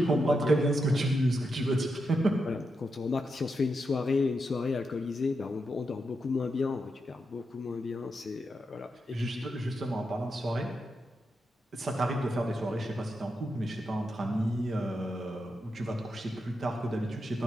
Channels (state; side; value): normal; both; correlation 0.85